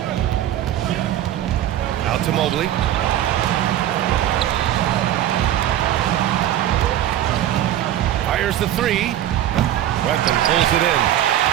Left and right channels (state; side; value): quieter; left; 12.1 dB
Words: Out to Mobley. Fires the 3. Wetman pulls it in.